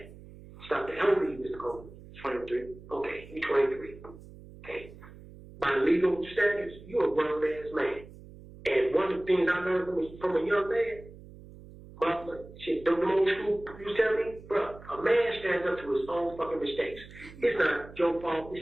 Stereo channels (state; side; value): noise; right; hum, 18 dB below the sound